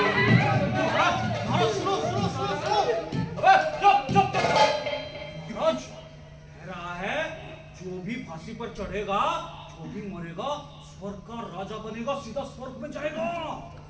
रहा है जो भी फांसी पर चढ़ेगा, जो भी मरेगा, स्वर्ग का राजा बनेगा, सीधा स्वर्ग में जाएगा।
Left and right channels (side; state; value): both; identical; correlation 1.00